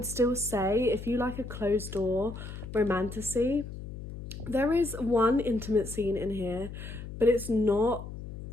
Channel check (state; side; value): noise; left; hum, 10 dB below the sound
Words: still say if you like a closed door romantasy, there is one intimate scene in here, but it's not